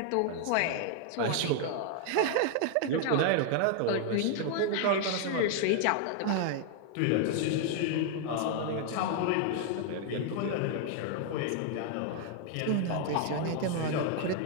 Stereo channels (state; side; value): different; both; correlation 0.00